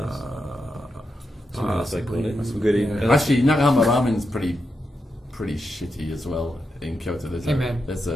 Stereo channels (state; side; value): normal; both; correlation 0.86